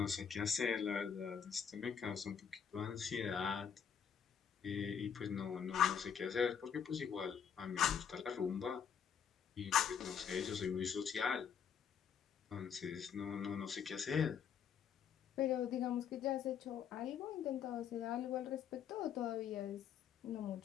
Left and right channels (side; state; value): right; quieter; 7.7 dB